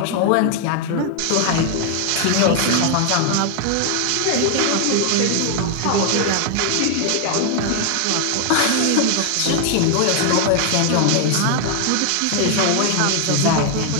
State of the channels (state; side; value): different; both; correlation 0.00